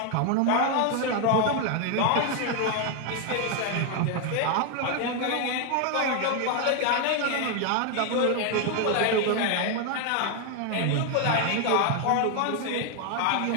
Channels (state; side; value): different; both; correlation 0.01